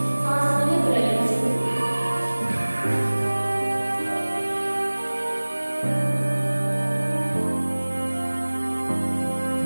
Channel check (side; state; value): both; inverted; correlation -1.00